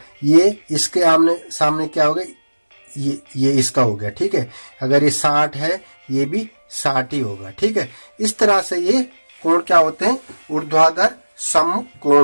ये इसके आमने सामने क्या हो गया, ये इसका हो गया। ठीक है, अगर ये 60 है, ये भी 60 ही होगा। ठीक है, इस तरह से ये कोण क्या होते हैं, ऊर्ध्वाधर सम्मुख कोण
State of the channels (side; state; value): both; inverted; correlation -1.00